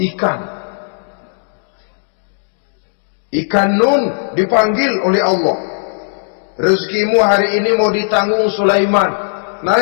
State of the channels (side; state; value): right; silent; digital silence